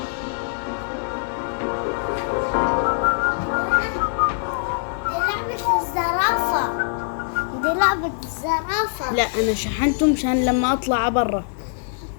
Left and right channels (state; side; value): silent; right; digital silence